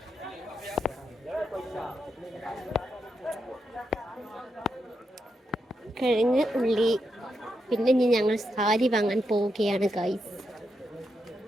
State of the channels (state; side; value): normal; both; correlation 0.84